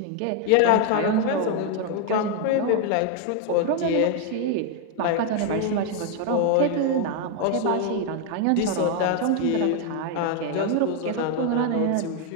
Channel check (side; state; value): both; different; correlation 0.01